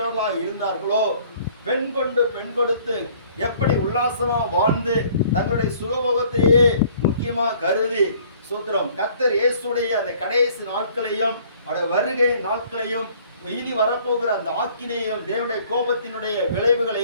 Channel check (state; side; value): inverted; both; correlation -0.57